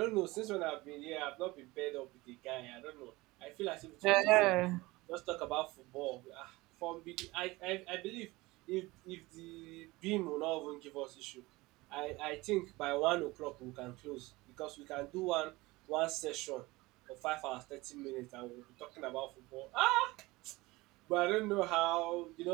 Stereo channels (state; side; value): quieter; left; 21.2 dB